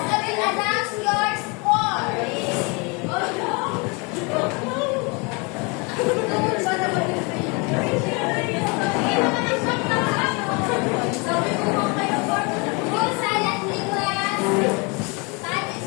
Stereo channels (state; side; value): quieter; right; 30.3 dB